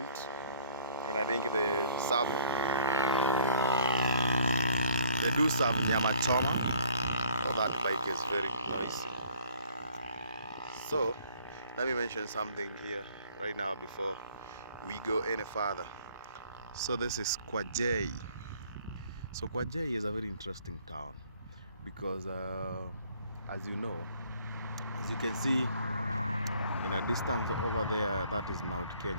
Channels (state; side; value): inverted; both; correlation -0.58